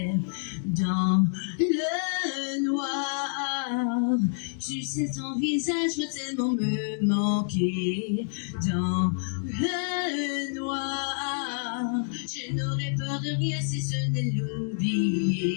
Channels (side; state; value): right; silent; digital silence